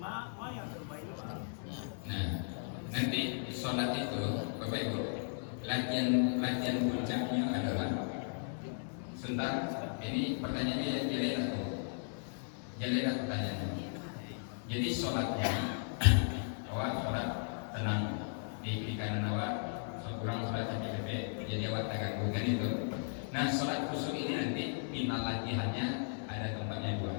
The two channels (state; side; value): silent; right; 54 dB below the other